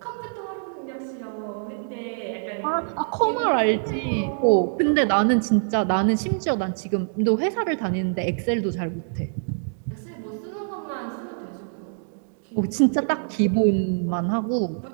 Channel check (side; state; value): left; silent; digital silence